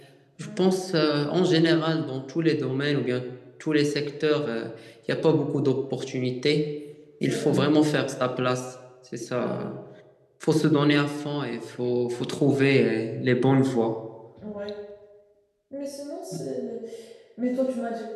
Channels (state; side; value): identical; both; correlation 1.00